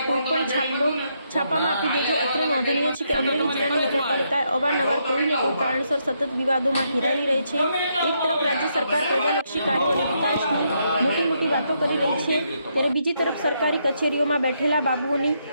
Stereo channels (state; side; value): inverted; both; correlation -0.77